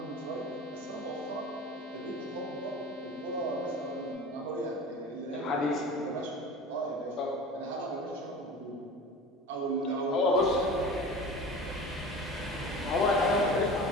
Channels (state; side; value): normal; both; correlation 0.36